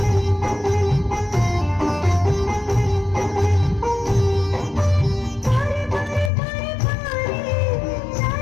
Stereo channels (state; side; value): drops out; right; at 6.3 s